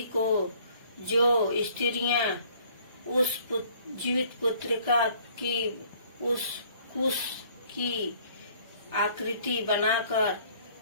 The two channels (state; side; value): inverted; both; correlation -0.58